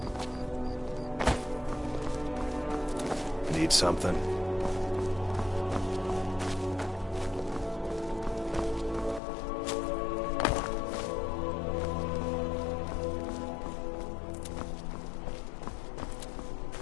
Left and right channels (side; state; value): right; drops out; at 9.2 s